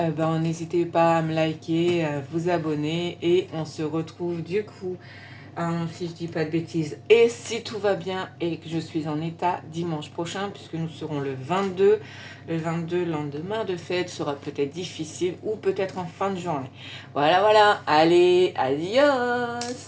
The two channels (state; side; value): identical; both; correlation 1.00